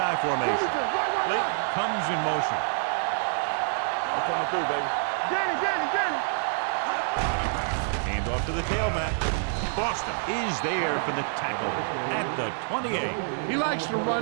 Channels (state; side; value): silent; left; digital silence